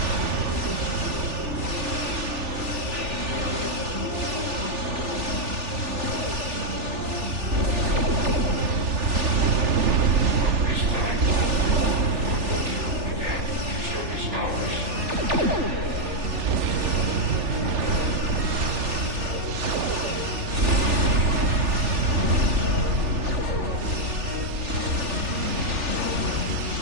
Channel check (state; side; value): late; left; 3.4 ms